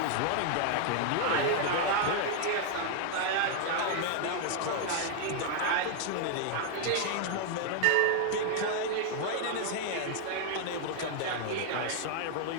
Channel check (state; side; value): different; both; correlation 0.00